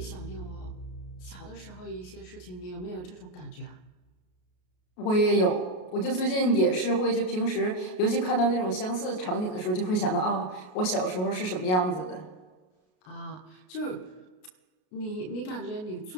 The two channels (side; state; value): right; late; 33 ms